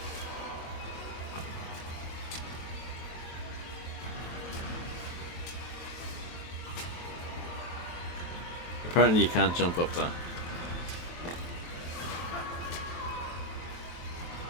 Apparently you can't jump up that.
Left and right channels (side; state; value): right; late; 23 ms